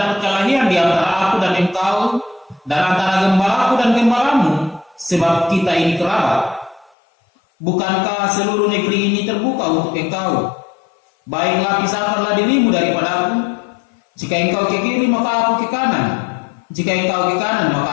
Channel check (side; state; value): right; drops out; at 6.9 s